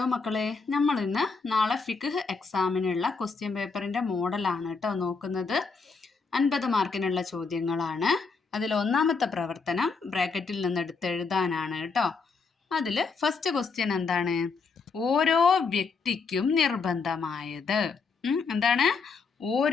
മക്കളെ, നമ്മൾ ഇന്ന് നാളെ ഫിഖ് എക്സാമിനുള്ള ക്വസ്റ്റ്യൻ പേപ്പറിൻ്റെ മോഡലാണ് കേട്ടോ നോക്കുന്നത്. 50 മാർക്കിനുള്ള ചോദ്യങ്ങളാണ്. അതിൽ ഒന്നാമത്തെ പ്രവർത്തനം ബ്രാക്കറ്റിൽ നിന്ന് എടുത്ത് എഴുതാനാണ് കേട്ടോ. അതിൽ ഫസ്റ്റ് ക്വസ്റ്റ്യൻ എന്താണ്? ഓരോ വ്യക്തിക്കും നിർബന്ധമായത്. എന്താണ്?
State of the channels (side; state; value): right; quieter; 4.7 dB